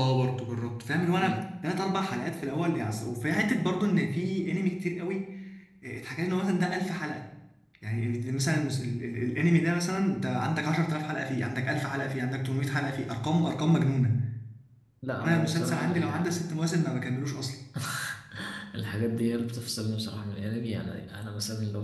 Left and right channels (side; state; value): both; identical; correlation 1.00